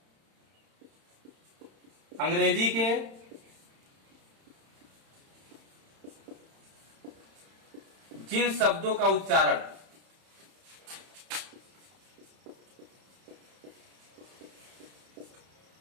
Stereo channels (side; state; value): left; late; 31 ms